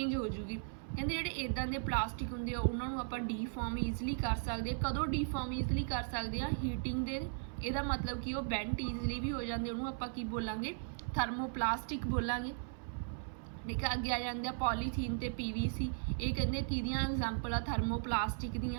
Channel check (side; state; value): left; silent; 53 dB below the other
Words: ਹੋ ਜਾਊਗੀ। ਕਹਿੰਦੇ ਜਿਹੜੇ ਇੱਦਾਂ ਦੇ ਪਲਾਸਟਿਕ ਹੁੰਦੇ ਆ ਉਹਨਾਂ ਨੂੰ ਆਪਾਂ ਡੀਫਾਰਮ ਈਜ਼ਲੀ ਕਰ ਸਕਦੇ ਹਾਂ। ਕਦੋਂ ਡੀਫਾਰਮ ਈਜ਼ਲੀ ਕਰ ਸਕਦੇ ਹਾਂ, ਹੀਟਿੰਗ ਦੇ। ਇਹਦਾ ਮਤਲਬ ਕਿ ਉਹ ਬੈਂਟ ਈਜ਼ਲੀ ਵੀ ਹੋ ਜਾਂਦੇ, ਉਹਨੂੰ ਆਪਾਂ ਕੀ ਬੋਲਾਂਗੇ, ਥਰਮੋਪਲਾਸਟਿਕ ਬੋਲਾਂਗੇ। ਠੀਕ ਆ, ਅੱਗੇ ਆ ਜਾਂਦੇ ਆ ਪੋਲੀਥੀਨ ਅਤੇ PVC। ਇਹ ਕਹਿੰਦੇ ਕਿਹਦੀਆਂ ਐਗਜ਼ਾਮਪਲ ਆ, ਥਰਮੋਪਲਾਸਟਿਕ